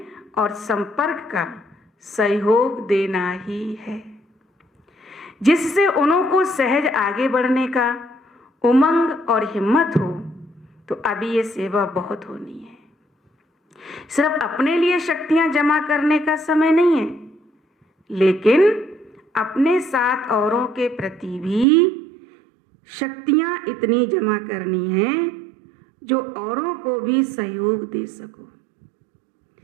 और संपर्क का सहयोग देना ही है, जिससे उनको सहज आगे बढ़ने का उमंग और हिम्मत हो। तो अभी ये सेवा बहुत होनी है। सिर्फ अपने लिए शक्तियां जमा करने का समय नहीं है, लेकिन अपने साथ औरों के प्रति भी शक्तियां इतनी जमा करनी है जो औरों को भी सहयोग दे सको।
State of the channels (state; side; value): drops out; left; at 21.7 s